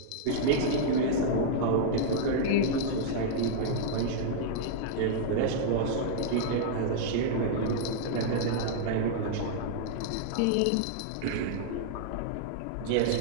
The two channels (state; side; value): different; both; correlation -0.01